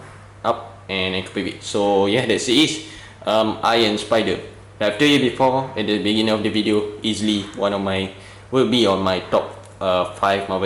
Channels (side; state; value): both; identical; correlation 1.00